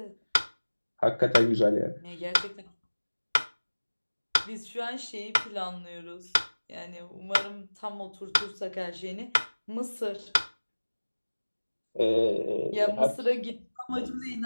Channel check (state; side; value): inverted; both; correlation -1.00